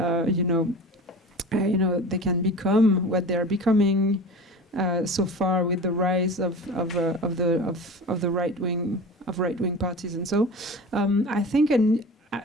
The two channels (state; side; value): normal; both; correlation 0.35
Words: they can become what they are becoming so far with the rise of the right wing parties. And so, I think